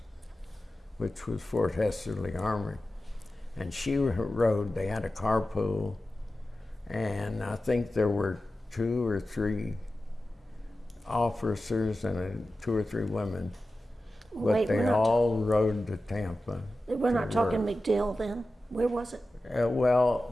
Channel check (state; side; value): normal; both; correlation 0.94